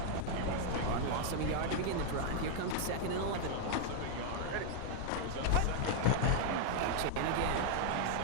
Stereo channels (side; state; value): both; different; correlation 0.00